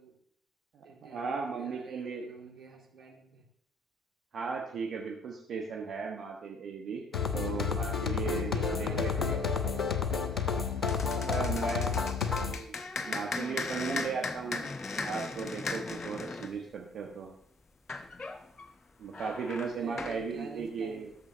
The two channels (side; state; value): both; normal; correlation 0.54